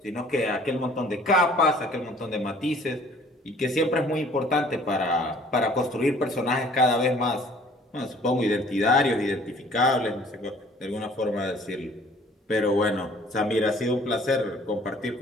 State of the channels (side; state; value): both; normal; correlation 0.54